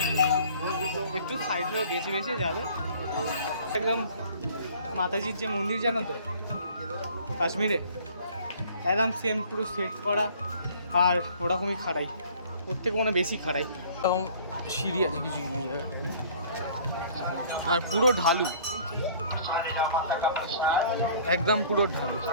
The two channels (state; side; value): inverted; both; correlation -0.52